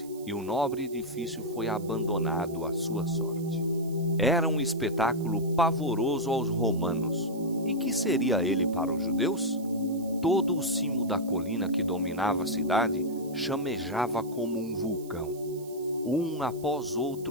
e o nobre edifício foi abandonado à sua sorte. Era um espetáculo pavoroso aos romanos. E que seria ele para os judeus? Todo o cimo da colina que dominava a cidade chamejava como um vulcão. Um após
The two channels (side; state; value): right; noise; hiss, 21 dB below the sound